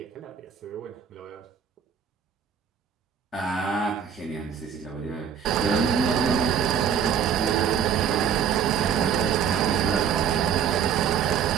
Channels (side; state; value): left; quieter; 7.8 dB